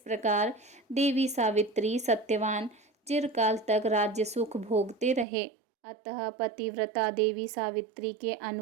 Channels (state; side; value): drops out; left; at 5.2 s